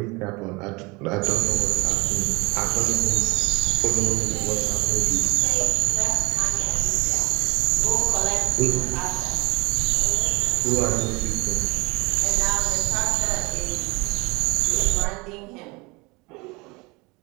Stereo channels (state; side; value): quieter; left; 25.5 dB